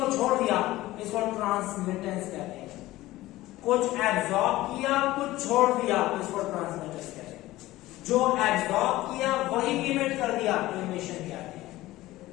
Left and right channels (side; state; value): right; quieter; 17.1 dB